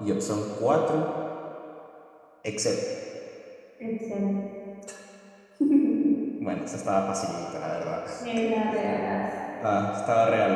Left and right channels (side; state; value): both; identical; correlation 1.00